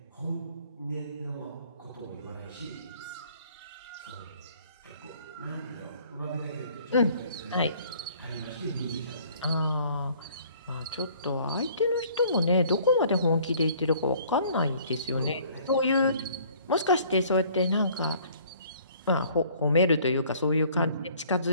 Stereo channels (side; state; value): both; inverted; correlation -0.56